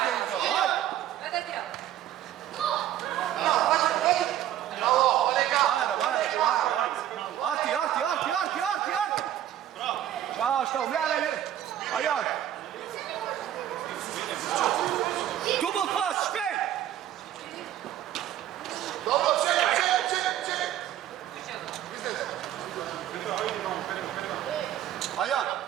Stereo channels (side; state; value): left; quieter; 11.9 dB